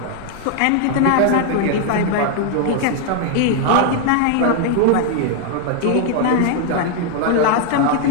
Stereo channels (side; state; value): both; different; correlation 0.00